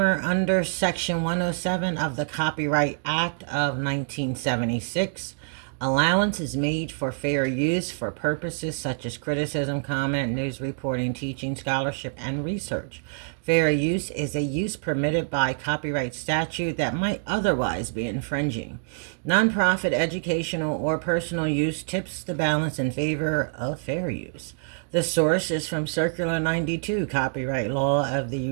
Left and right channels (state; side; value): silent; left; digital silence